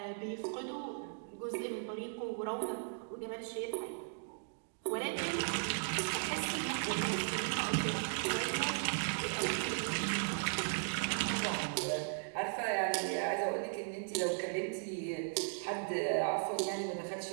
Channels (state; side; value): silent; left; digital silence